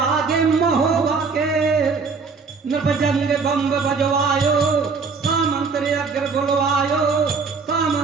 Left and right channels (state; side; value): quieter; left; 4.8 dB